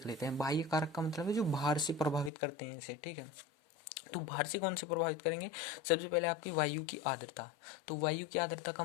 लेते हैं। बाह्य कारक का मतलब है जो बाहर से प्रभावित करते हैं इसे। ठीक है, तो बाहर से कौन से प्रभावित करेंगे? सबसे पहले आपकी वायु की आर्द्रता। तो वायु की आर्द्रता का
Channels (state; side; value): drops out; right; at 2.3 s